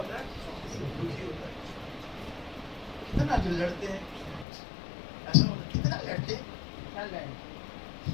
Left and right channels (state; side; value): drops out; right; at 4.5 s